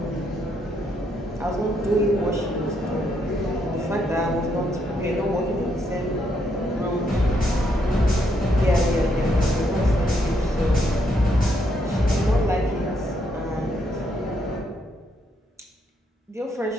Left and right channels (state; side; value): normal; both; correlation 0.75